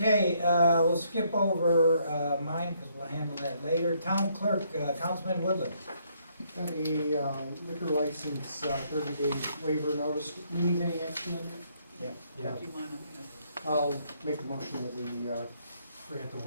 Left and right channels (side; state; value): both; inverted; correlation -0.70